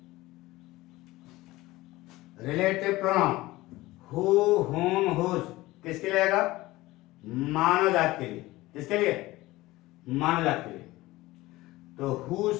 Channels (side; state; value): right; quieter; 18.8 dB